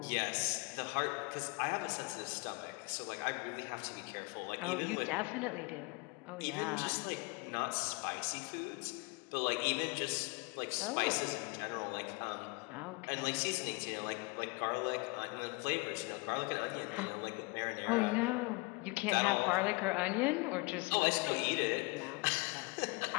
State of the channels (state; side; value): quieter; right; 28.0 dB